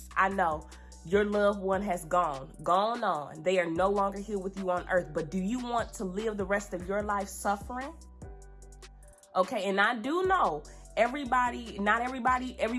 I know Your loved one has gone on. They are no longer here with you on earth. But do you want to live the rest of your life suffering? Okay, and I do know not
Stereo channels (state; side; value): identical; both; correlation 1.00